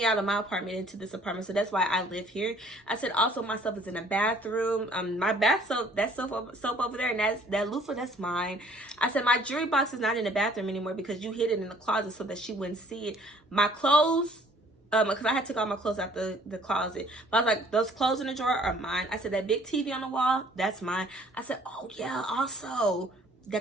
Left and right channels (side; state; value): both; normal; correlation 0.57